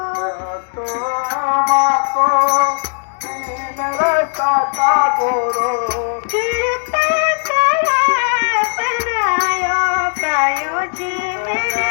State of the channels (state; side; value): silent; right; digital silence